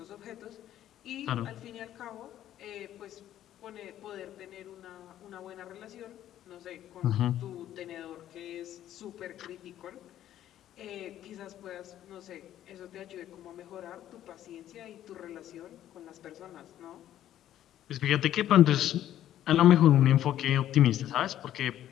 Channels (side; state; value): right; quieter; 12.0 dB